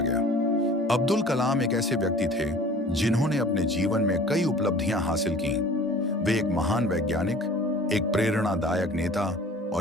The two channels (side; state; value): both; normal; correlation 0.46